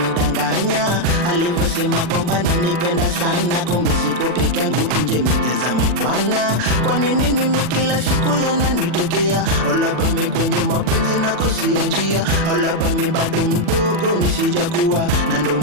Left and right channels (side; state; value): left; late; 40 ms